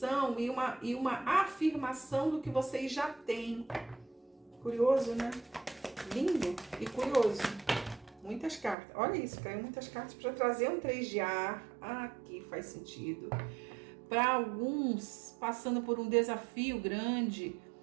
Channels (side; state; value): left; drops out; at 8.8 s